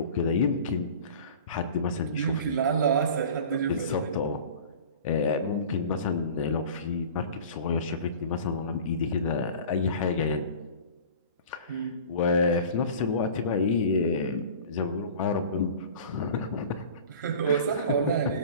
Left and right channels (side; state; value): both; inverted; correlation -0.40